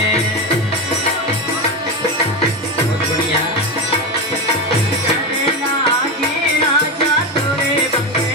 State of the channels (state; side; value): normal; both; correlation 0.16